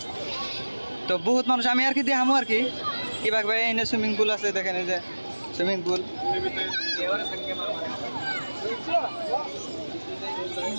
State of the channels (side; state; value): both; inverted; correlation -1.00